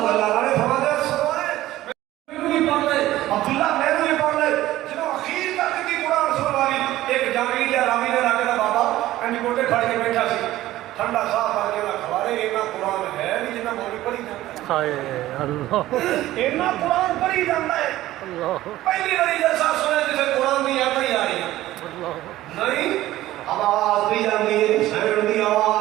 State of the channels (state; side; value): quieter; left; 15.4 dB